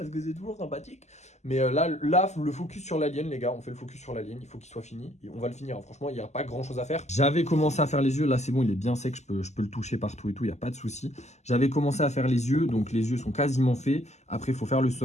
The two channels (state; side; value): late; right; 0.33 ms